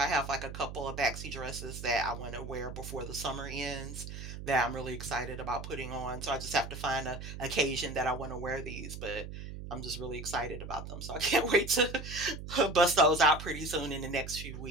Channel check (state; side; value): noise; right; hum, 9 dB below the sound